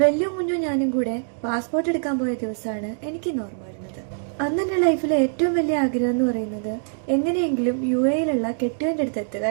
വെല്ലും കുഞ്ഞും ഞാനും കൂടെ പാസ്പോർട്ട് എടുക്കാൻ പോയ ദിവസമാണ് എനിക്കിന്ന് ഓർമ്മ വരുന്നത്. അന്ന് എൻ്റെ ലൈഫിലെ ഏറ്റവും വലിയ ആഗ്രഹം എന്ന് പറയുന്നത് എങ്ങനെയെങ്കിലും UAE-യിലുള്ള കെട്ടിയവൻ്റെ അടുത്ത് എത്തുക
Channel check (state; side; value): silent; left; digital silence